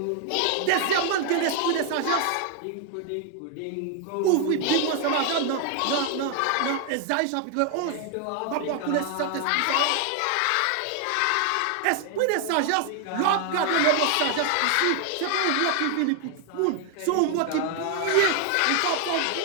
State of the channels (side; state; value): both; different; correlation 0.00